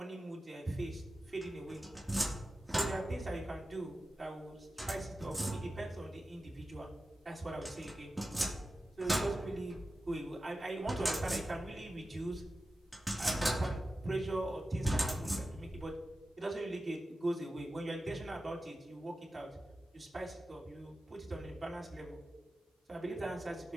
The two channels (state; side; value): normal; both; correlation 0.93